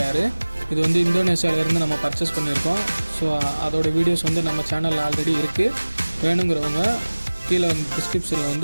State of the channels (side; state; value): both; inverted; correlation -1.00